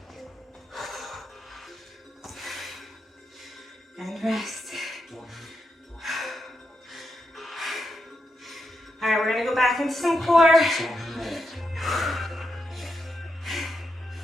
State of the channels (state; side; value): normal; both; correlation 0.84